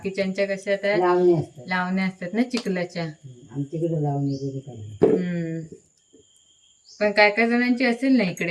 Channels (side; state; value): both; identical; correlation 1.00